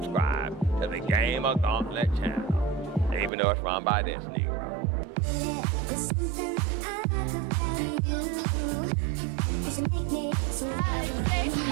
to the GamerGauntlet channel, even though it's run by this nigga. There's something I like about you. Cause you make me so happy.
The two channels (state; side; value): drops out; left; at 3.3 s